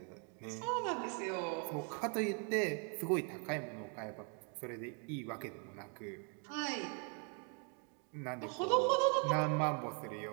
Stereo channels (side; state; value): left; quieter; 36.4 dB